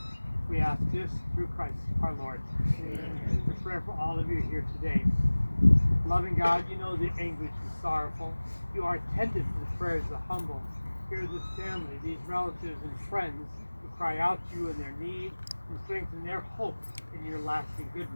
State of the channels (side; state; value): both; inverted; correlation -1.00